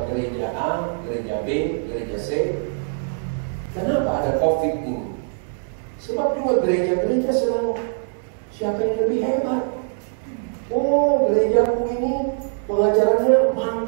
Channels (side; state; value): left; silent; digital silence